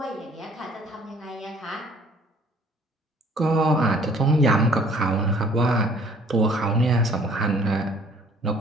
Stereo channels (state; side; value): normal; both; correlation 0.56